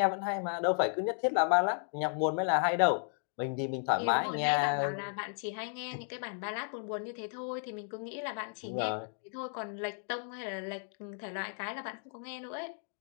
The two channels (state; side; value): silent; right; 55 dB below the other